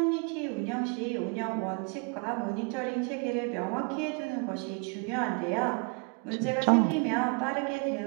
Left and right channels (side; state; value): left; quieter; 34.1 dB